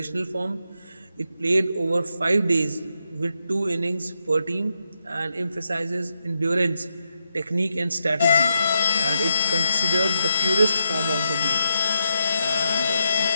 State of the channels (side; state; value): both; inverted; correlation -0.81